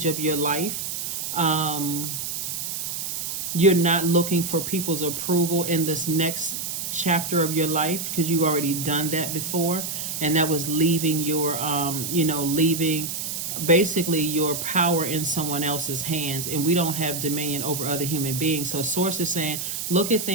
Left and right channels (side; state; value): right; noise; hiss, 4 dB below the sound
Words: of your life. You're not looking for people's approval in this next chapter of your life, because you've already done that before. And that was leaving your, leaving basically your power in someone else's hands. And we don't have dominion over other human beings. So Source is saying, look at